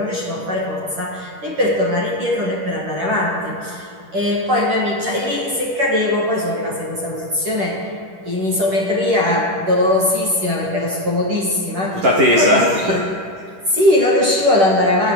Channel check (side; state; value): left; late; 10 ms